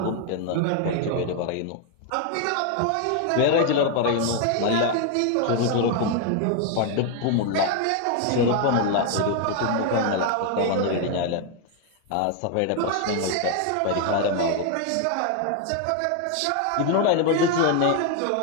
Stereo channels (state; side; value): different; both; correlation 0.01